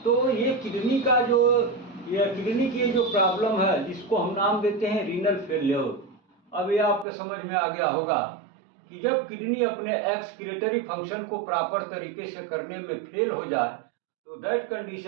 तो ये किडनी का जो किडनी की जो प्रॉब्लम है जिसको हम नाम देते हैं रीनल फेल्योर। अब ये आपके समझ में आ गया होगा कि जब किडनी अपने एक्सक्रीटरी फंक्शन को प्रॉपर तरीके से करने में फेल हो जाए तो that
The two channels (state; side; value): drops out; left; at 7.1 s